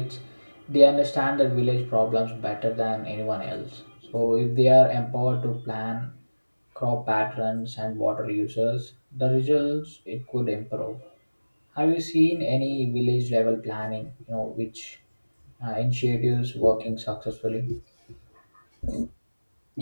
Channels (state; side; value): inverted; both; correlation -1.00